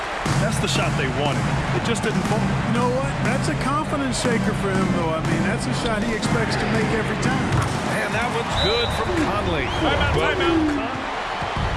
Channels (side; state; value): both; identical; correlation 1.00